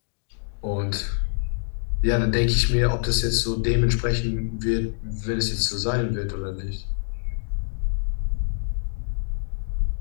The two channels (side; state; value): right; silent; digital silence